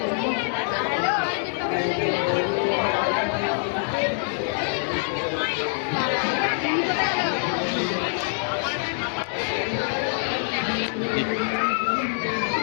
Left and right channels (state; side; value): silent; right; digital silence